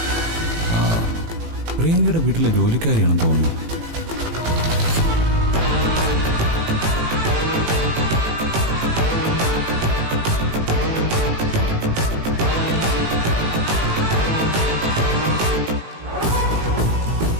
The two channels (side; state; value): left; late; 18 ms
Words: പ്രിയങ്കയുടെ വീട്ടിലെ ജോലിക്കാരിയാണെന്ന് തോന്നുന്നു.